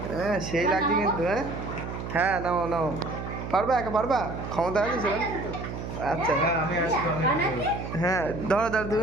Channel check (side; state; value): right; noise; hum, 7 dB below the sound